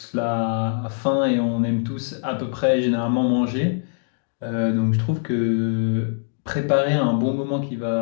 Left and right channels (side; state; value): right; silent; digital silence